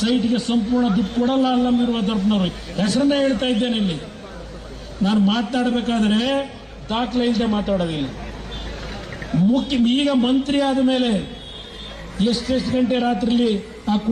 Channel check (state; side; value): identical; both; correlation 1.00